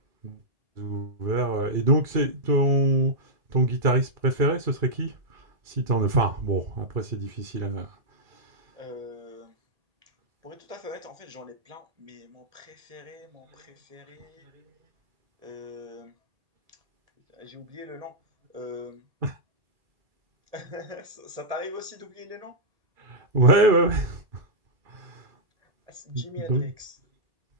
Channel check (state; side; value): late; left; 2.5 ms